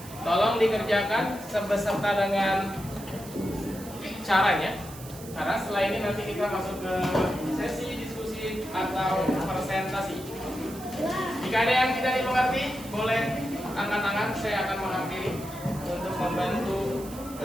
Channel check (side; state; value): right; noise; hiss, 16 dB below the sound